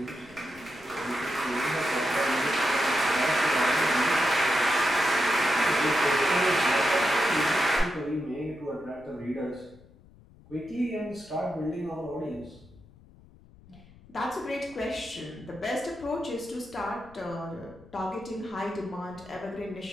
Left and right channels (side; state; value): left; noise; rumble, 24 dB below the sound